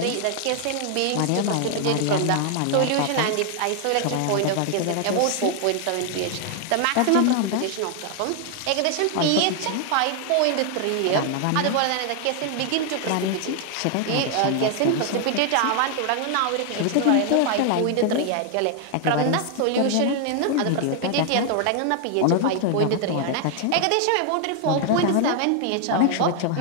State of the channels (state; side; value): different; both; correlation 0.00